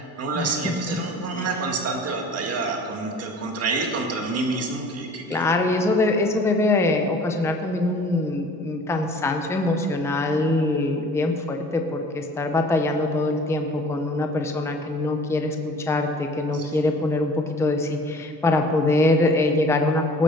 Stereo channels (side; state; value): both; normal; correlation 0.48